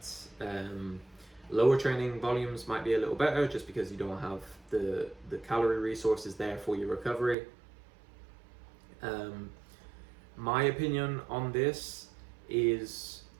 lower training volumes might be a little better just because you don't have the calorie resources there for your recovery. My opinion on this is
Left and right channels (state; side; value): drops out; left; at 7.4 s